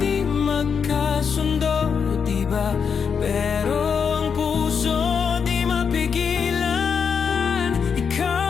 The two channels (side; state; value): right; quieter; 6.5 dB